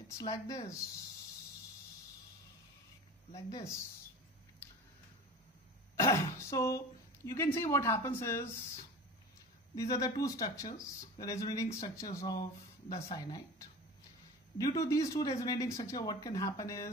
like this. Like this. So you can see what happens is these are the two structures, the resonating structures of the cyanide. Due to these two resonating structures, what can happen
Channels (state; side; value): normal; both; correlation 0.35